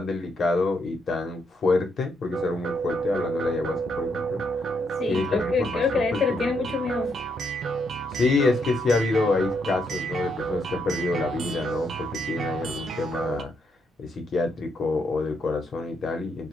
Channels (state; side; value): normal; both; correlation 0.77